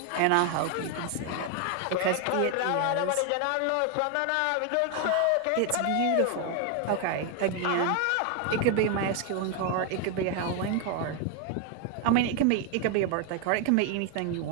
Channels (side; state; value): both; different; correlation 0.01